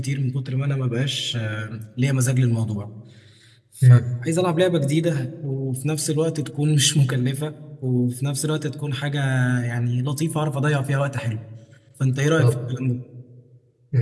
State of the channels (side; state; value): both; identical; correlation 1.00